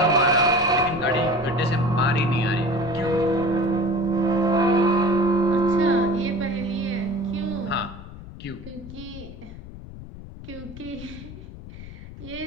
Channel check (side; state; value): left; noise; rumble, 14 dB below the sound